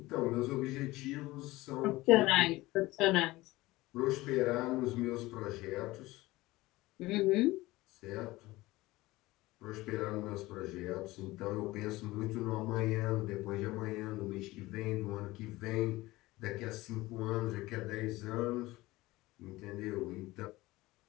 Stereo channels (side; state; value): right; quieter; 19.3 dB